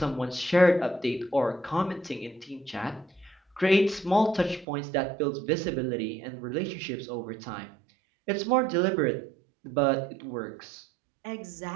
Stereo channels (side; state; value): left; drops out; at 4.7 s